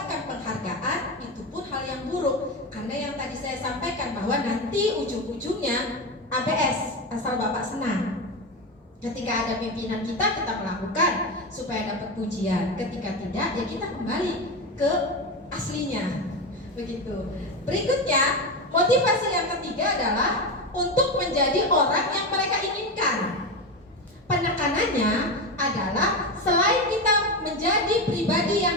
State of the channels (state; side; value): normal; both; correlation 0.17